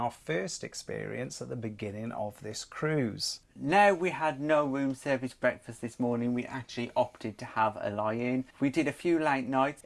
first experience at the beginning of this cruise. Now, we had no room service breakfast this morning. We actually opted to have a lie-in. We did a few late nights,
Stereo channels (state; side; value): identical; both; correlation 1.00